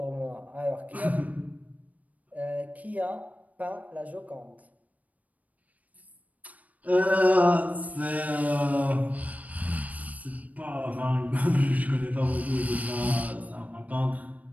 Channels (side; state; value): left; late; 0.072 ms